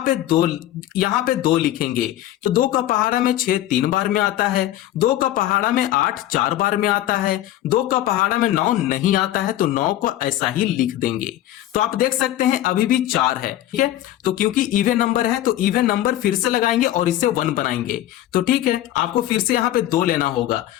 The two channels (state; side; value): quieter; right; 13.5 dB